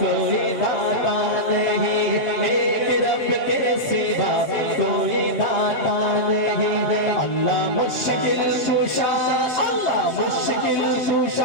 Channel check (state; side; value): late; right; 7.5 ms